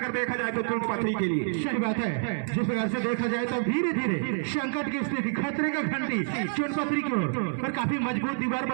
देखा जाए तो चुनपत्री के लिए। सही बात है, जिस प्रकार से देखा जाए तो धीरे धीरे संकट की स्थिति, खतरे का घंटी चुनपत्री की ओर, और काफी मजबूत दीवार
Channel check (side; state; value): left; silent; 59 dB below the other